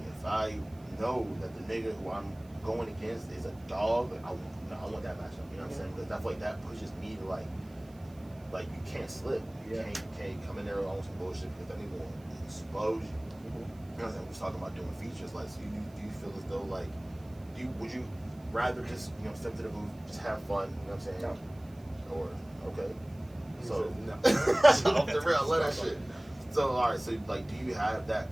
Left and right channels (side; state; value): right; noise; hiss, 28 dB below the sound